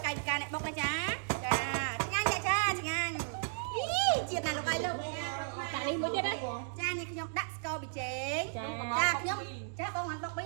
កាយវិការអ្នកបុកណាចាចាឆ្ងាញ់ចាឆ្ងាញ់ជាតិណាលោកអីលោកដាក់នេះមួយទៀតណាចានេះខ្ញុំដាក់ស្ករប៊ីចេងចាខ្ញុំចាបងបានបុកមី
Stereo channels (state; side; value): silent; left; digital silence